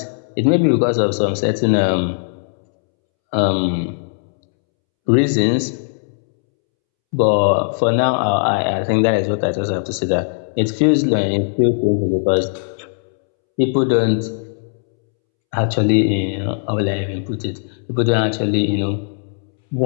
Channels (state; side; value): silent; right; 67 dB below the other